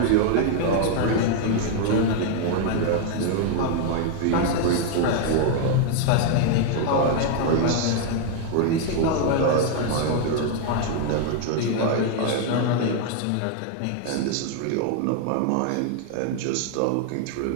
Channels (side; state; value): both; different; correlation 0.00